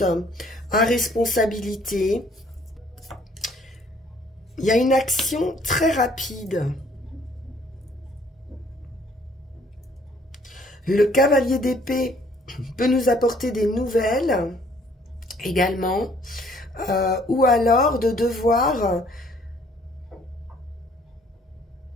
à responsabilité. Il y a une action très rapide. Le cavalier d'épée peut nous apporter des nouvelles également, ou alors de devoir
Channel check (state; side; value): normal; both; correlation 0.60